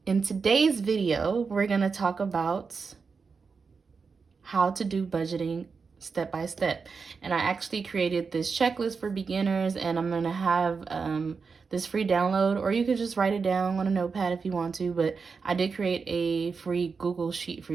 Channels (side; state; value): left; quieter; 5.1 dB